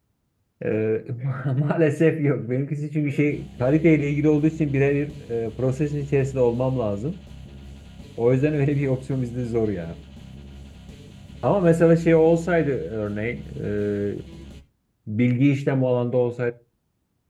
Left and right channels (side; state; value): both; identical; correlation 1.00